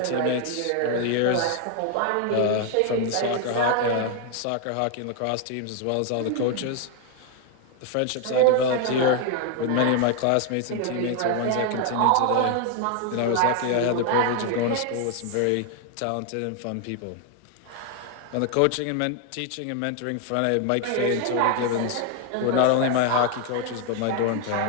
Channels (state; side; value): different; both; correlation 0.00